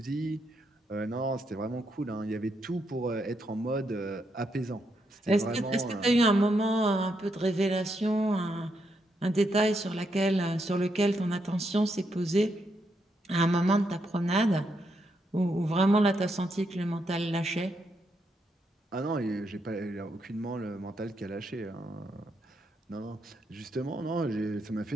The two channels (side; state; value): both; normal; correlation 0.79